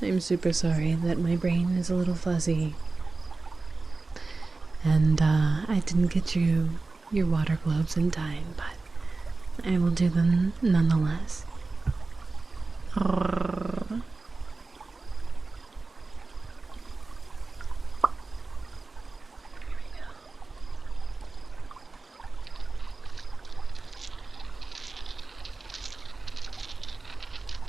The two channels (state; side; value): quieter; left; 3.7 dB